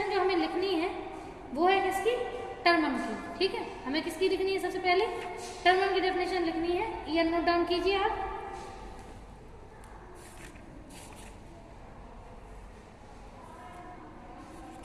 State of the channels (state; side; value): identical; both; correlation 1.00